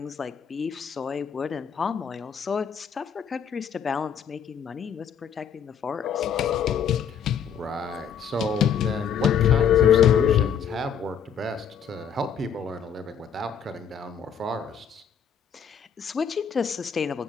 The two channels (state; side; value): quieter; right; 7.4 dB